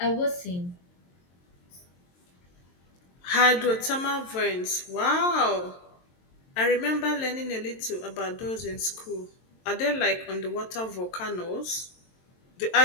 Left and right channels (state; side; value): late; right; 22 ms